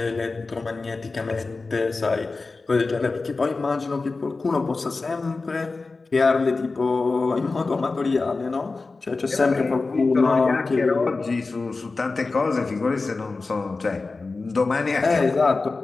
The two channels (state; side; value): quieter; right; 3.8 dB